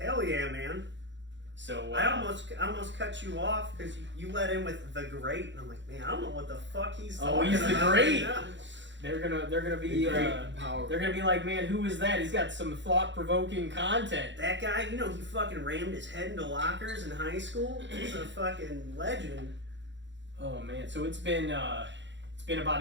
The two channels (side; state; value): left; late; 0.53 ms